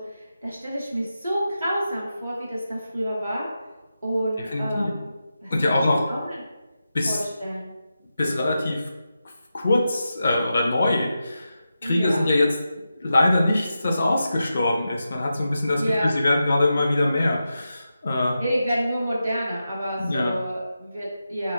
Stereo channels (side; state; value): both; inverted; correlation -0.90